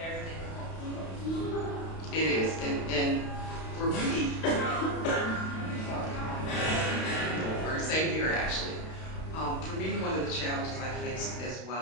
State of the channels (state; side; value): late; right; 32 ms